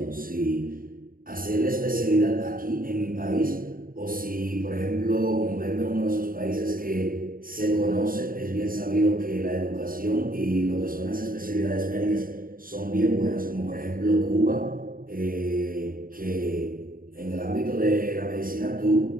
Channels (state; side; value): late; left; 0.41 ms